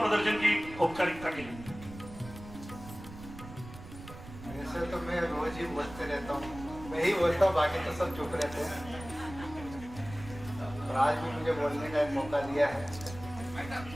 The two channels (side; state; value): right; noise; rumble, 14 dB below the sound